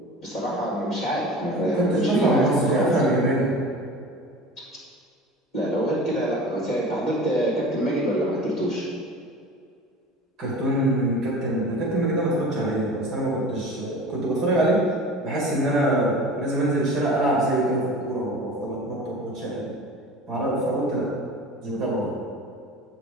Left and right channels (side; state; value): both; normal; correlation 0.38